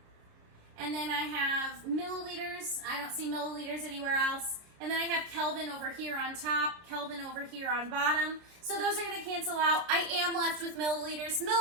And then I have milliliters. I don't see milliliters anywhere else. And then I have Kelvin over here on top, Kelvin over here on bottom. So those are going to cancel out. I am left with milliliters.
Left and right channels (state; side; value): late; left; 30 ms